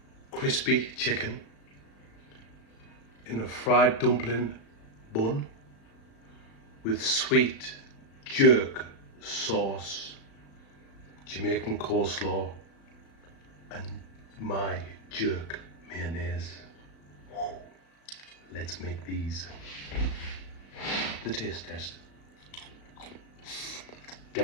Crispy chicken in a fried dumpling bun with sweet jerk sauce, Jamaican coleslaw, and my jerk mayonnaise. Let's make these. The taste test.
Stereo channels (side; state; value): right; late; 36 ms